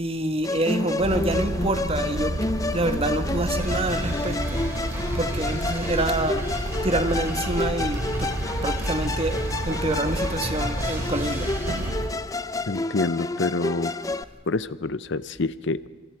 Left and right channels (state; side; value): normal; both; correlation 0.53